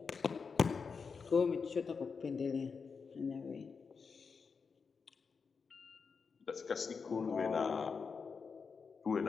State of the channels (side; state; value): right; quieter; 5.4 dB